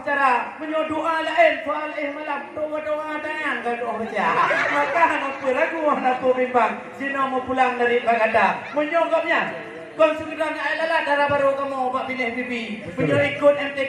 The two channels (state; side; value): identical; both; correlation 1.00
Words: cara. Menyo doa lain soal malam. Doa-doa tangan kan doa baca. Maka apa ragu apa bimbang. Sino mau pulang dari Bagada. Menyogapnya. Kau segera nak adalah darah baru kamu Pak pilih bibi. Punya ikut